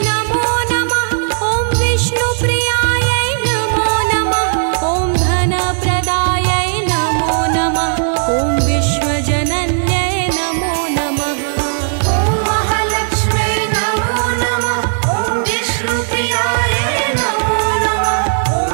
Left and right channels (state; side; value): silent; left; 67 dB below the other